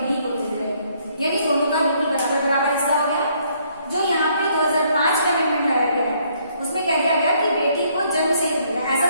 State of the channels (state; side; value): inverted; both; correlation -0.67